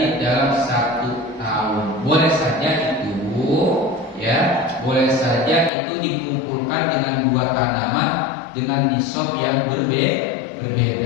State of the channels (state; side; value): drops out; right; at 5.7 s